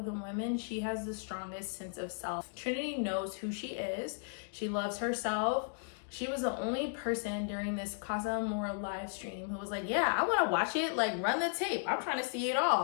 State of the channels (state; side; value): silent; right; digital silence